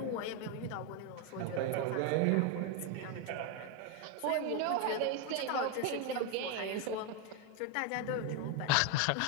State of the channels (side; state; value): both; different; correlation 0.01